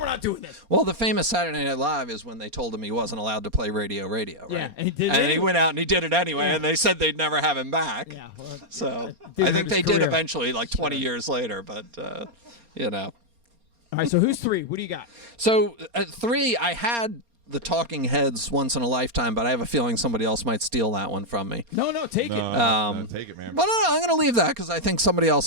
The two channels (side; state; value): left; late; 4.3 ms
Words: not doing this. Well, the famous Saturday Night Live is when they told him he wasn't allowed to play Radio, right? Yeah, and he did it And he anyway. went out and he did it anyway, Yeah. and they said they'd never have him back. Yeah. Well, So Didn't I think hurt they his did career. eventually, like 20 years later, but, you know. all right. So who's 3? What do you got? So at 3, I had the Talking Heads Once in a Lifetime, but I have a feeling somebody else might steal that one from me. No, take No, it. no, take it, man. But no, I'm going to leave that because I think somebody